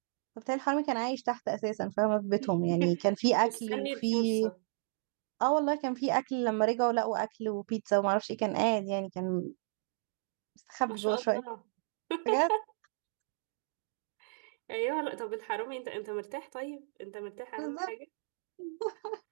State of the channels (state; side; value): silent; left; digital silence